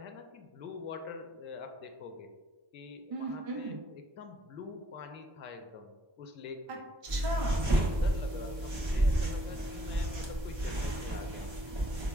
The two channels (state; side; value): late; left; 1.3 ms